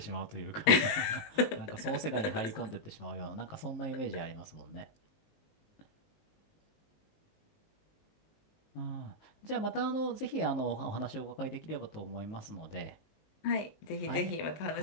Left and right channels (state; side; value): late; right; 20 ms